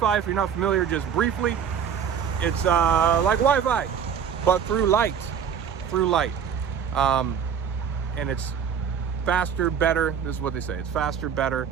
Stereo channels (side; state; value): left; quieter; 7.7 dB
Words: if you're not familiar, just briefly, it's like Wi-Fi, but through light. And it's faster, better. This is what they say. It's faster, better.